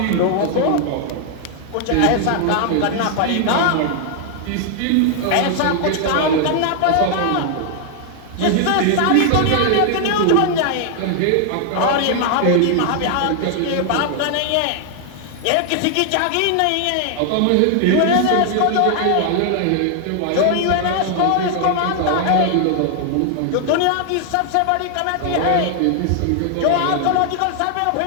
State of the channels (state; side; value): different; both; correlation 0.00